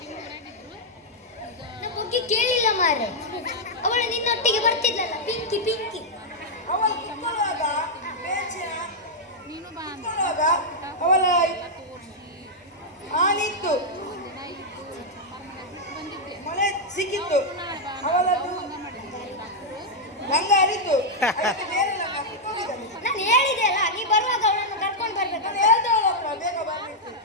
ನಾ ಬುಗ್ಗಿ ಕೇಳಿಲ್ಲ ಮಾರೆ. ಅವಳು ನಿನ್ನೊಟ್ಟಿಗೆ ಬರ್ತಿದ್ಲಲ್ಲ, ಪಿಂಕಿ ಪಿಂಕಿ. ಅವಳು ಕಿತ್ತುವಾಗ ಅವಳ ಆನಿತ್ತು, ಮಳೆ ಸಿಕ್ಕಿತ್ತು, ಅವಳದು ಗಂಗ ಹರಿತು. ನಾನು ಹೇಳಿದೆ ಅಲ್ಲ, ನೀ ಬರುವಾಗ ಅವಳನ್ನು ಕರ್ಕೊಂಡು ಬರ್ಬೇಕು. ನಾನು ಹೇಳ್ದೆ ಅವಳ ಹತ್ರ ಬೇಗ ಬರ್ಲಿಕ್ಕೆ.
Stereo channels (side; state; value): both; normal; correlation -0.04